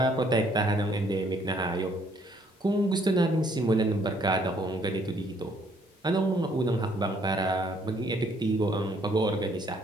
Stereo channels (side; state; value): both; normal; correlation 0.65